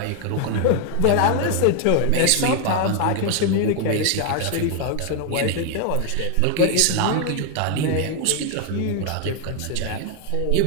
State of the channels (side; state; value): both; different; correlation 0.01